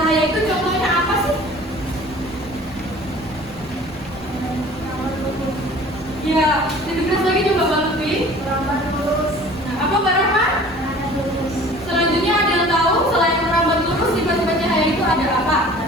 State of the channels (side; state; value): both; normal; correlation 0.46